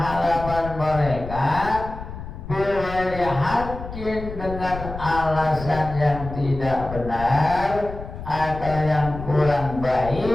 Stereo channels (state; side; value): noise; left; rumble, 10 dB below the sound